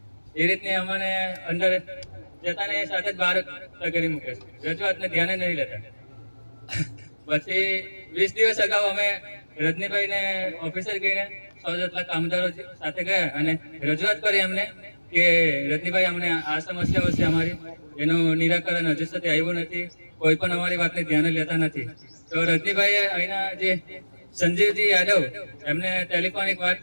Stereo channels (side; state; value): both; inverted; correlation -1.00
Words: એ રીતની અમને અંદર જતાને સાથે જ બહાર કરી મૂકે છે. રજૂઆતને ધ્યાને નહીં લેતા. પછી 20 દિવસ અગાઉ અમે રજનીભાઈને ઓફિસર ગઈને 100 જેટલા કામદારો સાથે ગયા અને રજૂઆત કરી એમને કે રજનીભાઈ અમને આ સમસ્યાઓ છે અમારી, એનું નિરાકરણ હજુ સુધી આવ્યું નથી, કોઈ પણ અમારી વાતને ધ્યાને લેતા નથી. તો રજનીભાઈએ અહીંના જે સંજીવજી યાદવ એમને ટેલિફોનિક